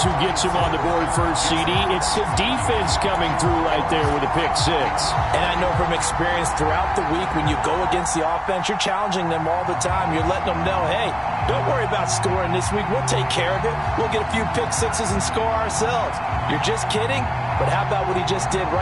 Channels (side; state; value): both; identical; correlation 1.00